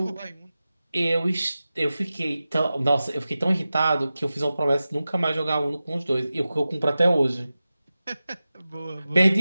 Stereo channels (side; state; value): both; inverted; correlation -0.95